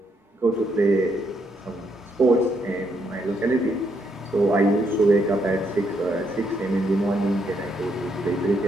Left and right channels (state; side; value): normal; both; correlation 0.75